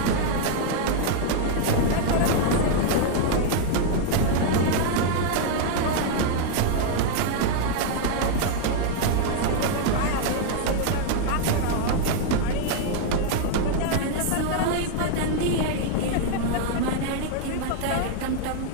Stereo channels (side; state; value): both; different; correlation 0.00